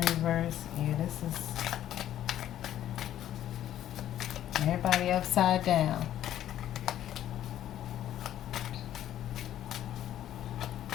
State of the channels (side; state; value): right; quieter; 11.8 dB